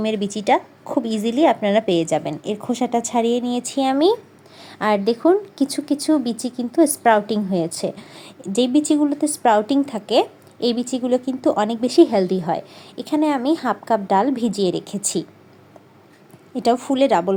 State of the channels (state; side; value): identical; both; correlation 1.00